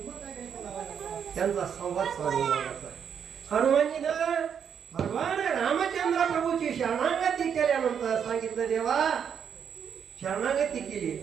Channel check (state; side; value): quieter; left; 7.7 dB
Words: त्यांचा संवाद चालू आहे. हनुमानजीनं भगवान रामचंद्र प्रभूची शरणागती केल्यानंतर सांगितलं, देवा शरणागती केली.